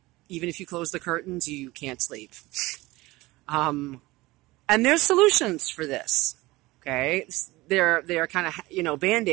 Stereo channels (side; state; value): left; quieter; 20.1 dB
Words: Even if you close the curtains, you can't sleep. And there's solutions for this. Okay, they're kind of, you know,